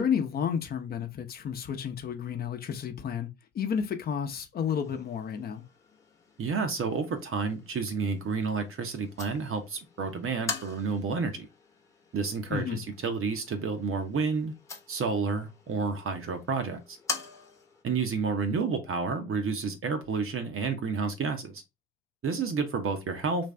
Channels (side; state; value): both; normal; correlation 0.33